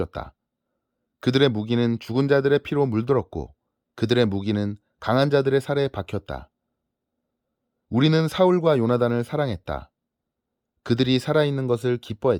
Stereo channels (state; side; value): identical; both; correlation 1.00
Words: 그들의 무기는 죽은 자들의 피로 물들었고 그들의 무기는 강한 자들의 살에 박혔다. 우리는 사울과 요나단을 사랑했다. 그들이 살아있는 것을